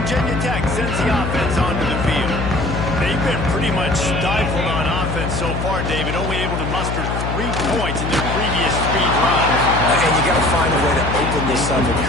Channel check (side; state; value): left; noise; hum, 3 dB below the sound